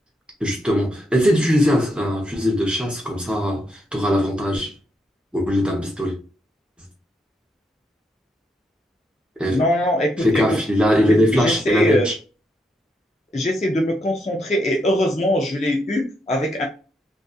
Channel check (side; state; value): both; normal; correlation 0.79